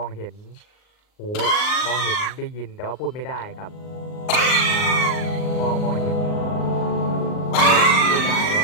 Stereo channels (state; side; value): late; right; 39 ms